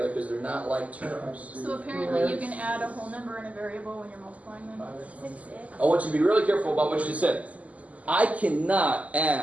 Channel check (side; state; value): left; late; 0.072 ms